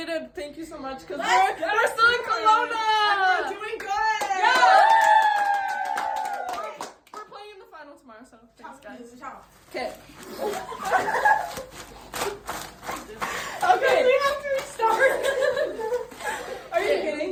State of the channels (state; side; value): identical; both; correlation 1.00